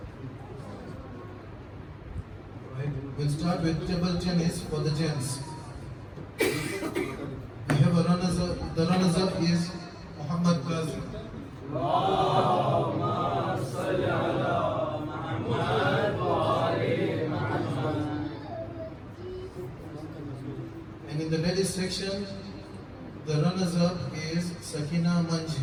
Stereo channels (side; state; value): both; identical; correlation 1.00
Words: Right. We'll start with table tennis for the gents. We have a runners-up. The runners-up is Muhammad Qazi. And in the ladies section, the runners-up is Sakina